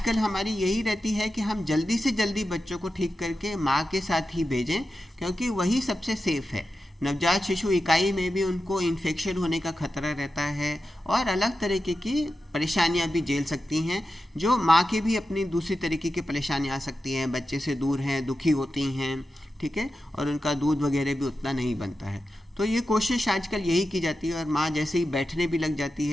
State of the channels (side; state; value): both; normal; correlation 0.91